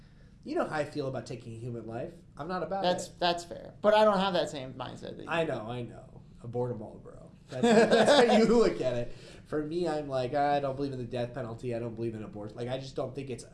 You know how I feel about taking a human life. I'm not about it. That's fair. But I don't have that same mindset that you I know. Abort them all, bro. That's how you look at it. For me, I'm like, I don't believe in the death penalty. I don't believe in abortion. Like, I just don't think it's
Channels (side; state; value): both; identical; correlation 1.00